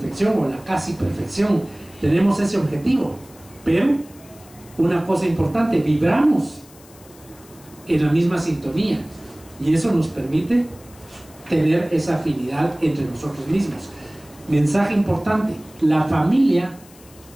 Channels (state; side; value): noise; left; hiss, 24 dB below the sound